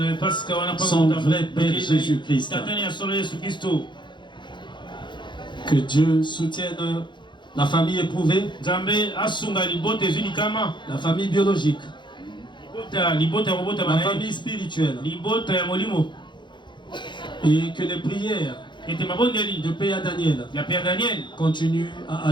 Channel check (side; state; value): right; late; 0.23 ms